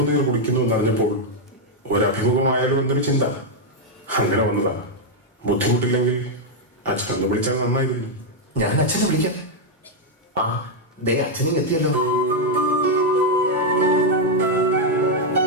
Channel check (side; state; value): both; normal; correlation 0.00